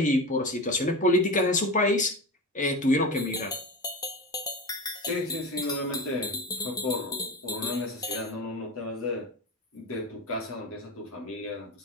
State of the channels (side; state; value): both; normal; correlation 0.25